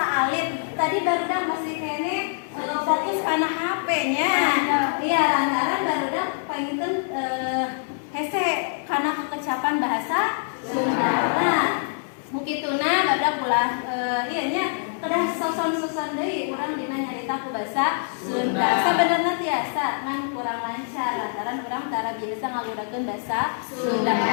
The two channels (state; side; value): silent; right; digital silence